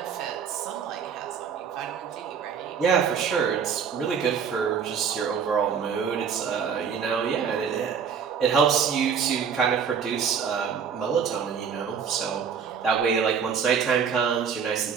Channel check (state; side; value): quieter; left; 6.9 dB